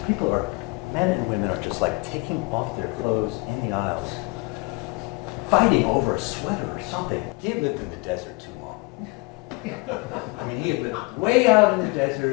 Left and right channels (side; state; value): right; quieter; 27.2 dB